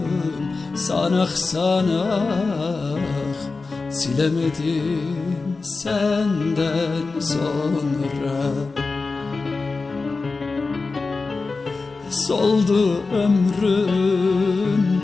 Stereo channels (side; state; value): right; quieter; 4.0 dB